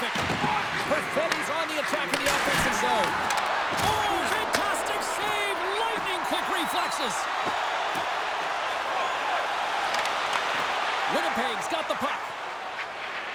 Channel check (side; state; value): both; identical; correlation 1.00